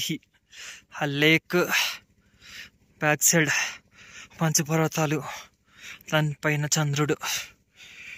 ఆ లేక్ బ్యాక్ సైడ్ పంచపర్వతాలు, దానిపైన చంద్రుడు.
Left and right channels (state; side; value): identical; both; correlation 1.00